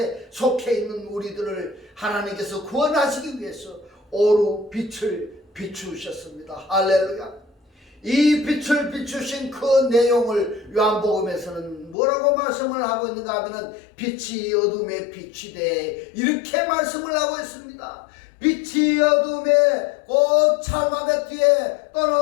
속해 있는 우리들을 하나님께서 구원하시기 위해서 오루 빛을 비추셨습니다. 할렐루야. 이 빛을 비추신 그 내용을 요한복음에서는 뭐라고 말씀을 하고 있는가 하면 빛이 어둠에 비치되, 이렇게 말씀을 하고 있습니다. 빛이 어둠에 곧 찰마베트에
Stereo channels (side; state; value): right; drops out; at 12.0 s